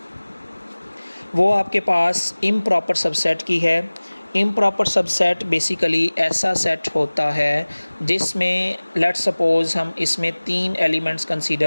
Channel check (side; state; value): both; inverted; correlation -1.00